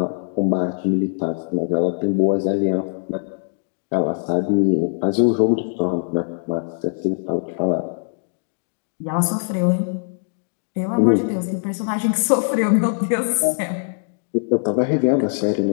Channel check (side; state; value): right; silent; digital silence